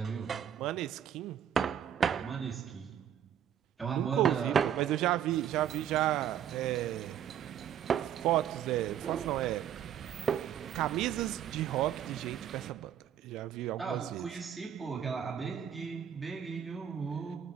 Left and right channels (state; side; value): quieter; left; 9.6 dB